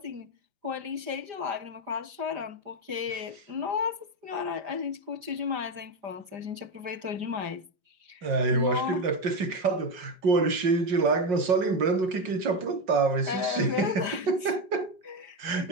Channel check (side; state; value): left; late; 5.0 ms